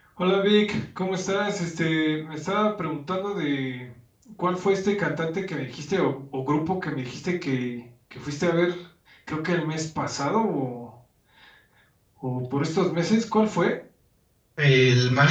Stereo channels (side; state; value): both; identical; correlation 1.00